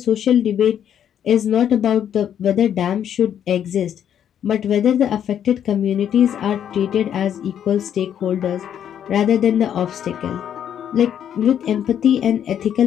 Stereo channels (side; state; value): right; quieter; 9.4 dB